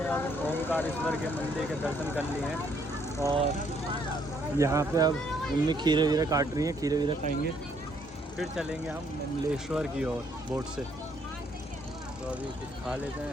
अब ओमकारेश्वर के मंदिर के दर्शन कर लिए हैं और यहाँ पे अब मम्मी खीरे वीरे काट रही हैं, खीरे वीरे खाएंगे, फिर चलेंगे हम ममलेश्वर की ओर बोट से। तो अभी कुछ खा लेते हैं,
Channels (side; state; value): both; normal; correlation 0.68